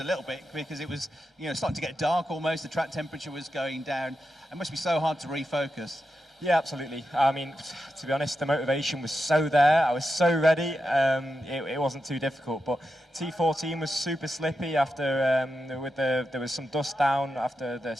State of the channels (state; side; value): normal; both; correlation 0.88